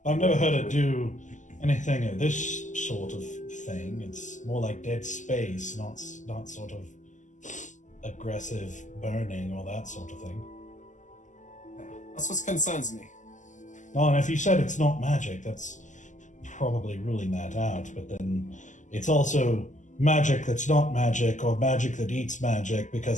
I've never heard it do anything of this sort of thing. It's more like dead space, not sort of aggressive burning or that sort of thing. That's what concerns me. Oh, and if you said it's not magic, that's probably ruling that out. But then it's also magic that's not magic, or magic that eats magic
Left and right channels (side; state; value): right; late; 0.36 ms